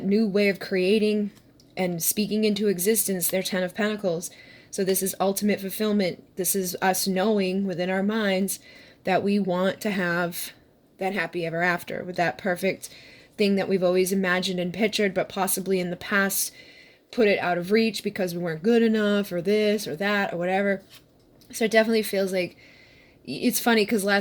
new way of creating and speaking into existence their 10 of Pentacles. So this is ultimate fulfillment. This is us knowing within our minds that we want to have that happy ever after with that perfect thing that we've always imagined and pictured, but possibly in the past put it out of reach because we weren't good enough or this or that or whatever. So it definitely feels like, it's funny because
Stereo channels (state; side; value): identical; both; correlation 1.00